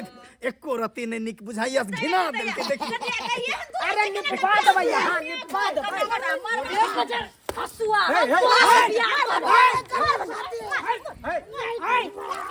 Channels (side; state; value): both; identical; correlation 1.00